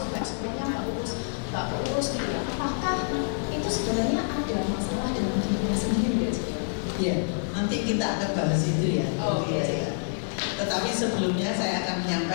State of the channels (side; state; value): right; silent; digital silence